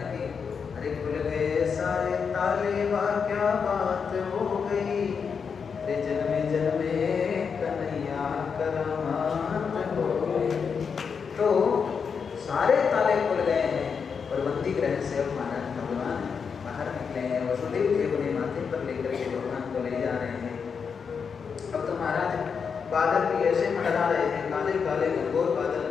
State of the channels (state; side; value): quieter; right; 6.1 dB